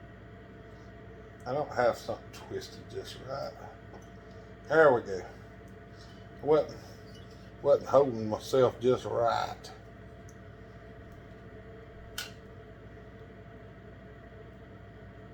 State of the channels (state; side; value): identical; both; correlation 1.00